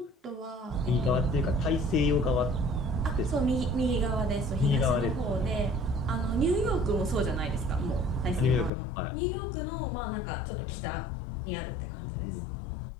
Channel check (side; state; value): right; drops out; at 8.7 s